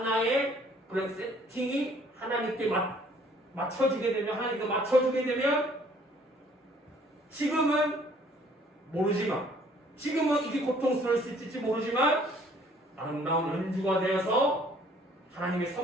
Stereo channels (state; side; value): normal; both; correlation 0.59